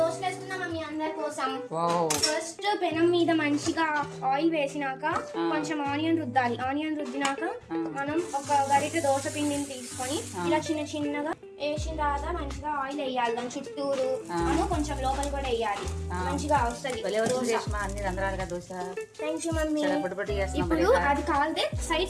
వేసుకున్నాం మమ్మీ అందరి కోసం. ఫస్ట్ పెనం మీద మంచిగా ఆయిల్ వేసినాక కొంచెం ఆనియన్ రుద్దాలి. ఆనియన్ రుద్దినాక మనం ఒక గరిటె దోశ పిండిని తీసుకొని ఇలా చిన్న చిన్నగా వేసిన తర్వాత మంచిగా ఆయిల్ వేయాలి. దాని చుట్టూరు మనం కొంచెం లోపల కూడా వేయాలి. మంచిగా వస్తుంది. Thank you mummy. ఇప్పుడు అది కాలితే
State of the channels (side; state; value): both; identical; correlation 1.00